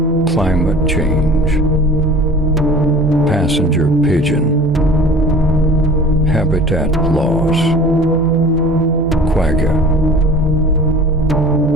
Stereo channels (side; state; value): both; normal; correlation 0.42